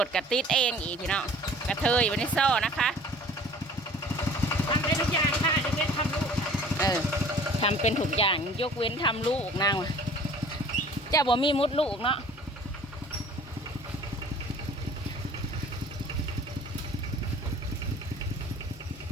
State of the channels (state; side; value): normal; both; correlation 0.48